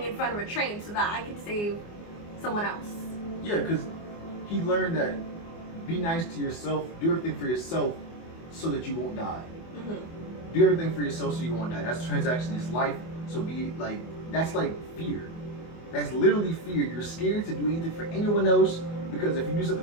in front of a train so that I can save someone else. Yeah, because he learned that be nice to yourself, do everything for yourself so that you won't die. Mm-hmm. Do everything for yourself so you won't die. That's a transaction, it's life. So be like, that's like fear. That's literally fear. You're scared to do anything for anyone else because if you do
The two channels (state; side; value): late; right; 24 ms